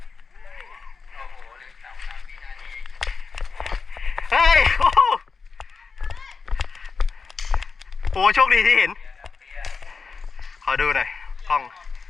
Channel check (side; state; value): right; quieter; 4.9 dB